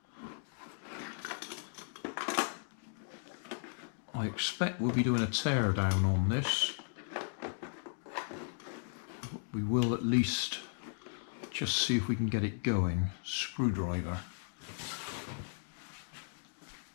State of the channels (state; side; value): silent; right; digital silence